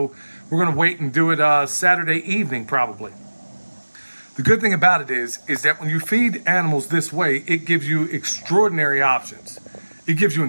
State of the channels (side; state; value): both; inverted; correlation -1.00